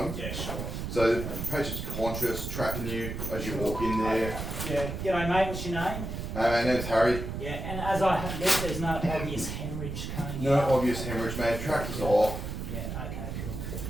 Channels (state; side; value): noise; right; rumble, 5 dB below the sound